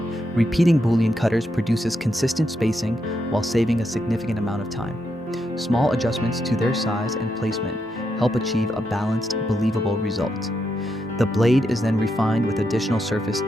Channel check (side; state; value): both; normal; correlation 0.82